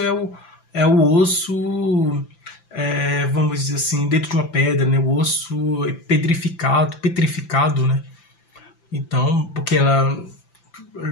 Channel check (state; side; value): late; right; 5.9 ms